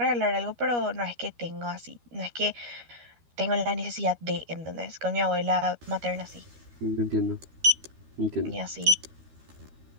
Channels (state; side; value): late; left; 13 ms